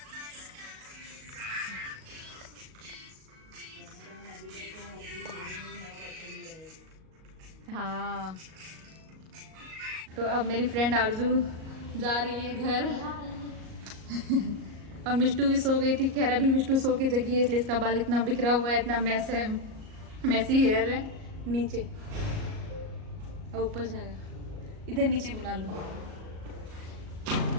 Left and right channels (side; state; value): left; late; 38 ms